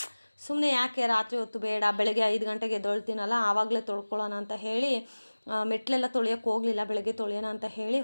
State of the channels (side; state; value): both; inverted; correlation -1.00